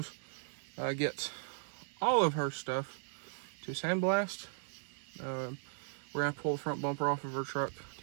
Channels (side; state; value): left; silent; digital silence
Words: get all of her stuff to sandblast. We're gonna pull the front bumper off of her truck